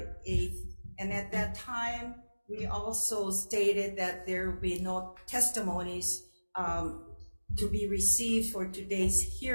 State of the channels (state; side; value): inverted; both; correlation -1.00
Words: 8th. And at that time, we also stated that there will be no testimonies to be received for today's